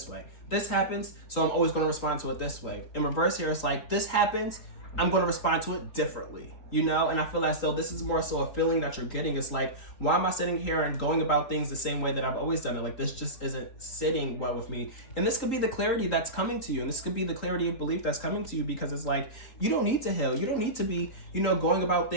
way. This happens, so I'm always going to respond to it this way. In reverse here, it's like, this happens, I'm going to respond to it differently, you know? And I feel as though this is more so a feeling that you're getting. It's like, why am I sitting here and going about things the same way that I've always done it? Like, this just isn't sitting well with me. And this could be the clarity that's coming to you. And this could be the clarity of belief that's coming to you, because it's like, you don't need to heal. You don't need to be, you know, going about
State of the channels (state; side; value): late; right; 3.8 ms